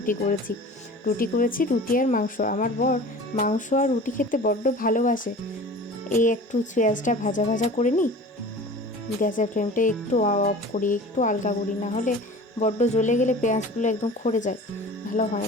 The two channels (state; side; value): normal; both; correlation 0.40